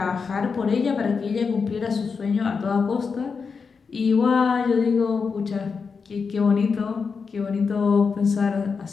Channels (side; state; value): right; quieter; 5.3 dB